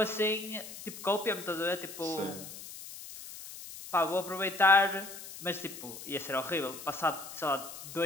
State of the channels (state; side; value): noise; left; hiss, 12 dB below the sound